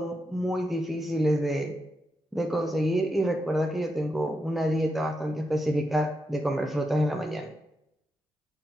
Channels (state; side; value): normal; both; correlation 0.85